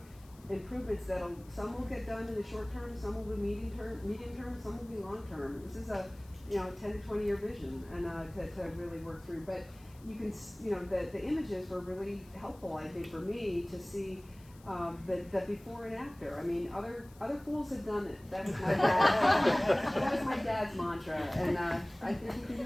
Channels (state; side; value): noise; left; hiss, 26 dB below the sound